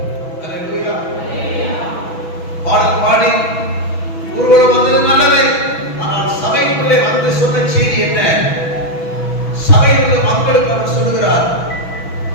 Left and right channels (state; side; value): late; right; 6.1 ms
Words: அல்லேலூயா. பாடல் பாடி ஊர்வலம் வந்தது நல்லது. ஆனால் சபைக்குள்ளே வந்து சொன்ன செய்தி என்ன? சபையில் உள்ள மக்களுக்கு அவர் சொல்லுகிறார்,